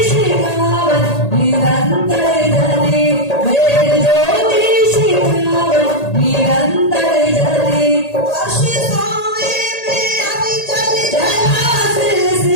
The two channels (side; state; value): right; late; 1.8 ms